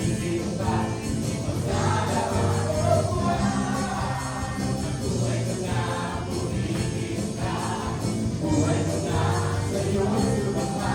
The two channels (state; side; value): identical; both; correlation 1.00